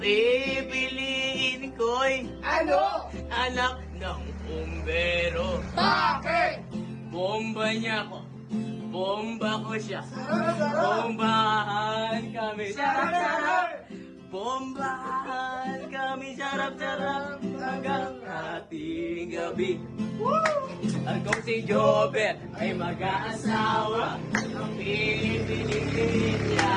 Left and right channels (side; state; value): both; identical; correlation 1.00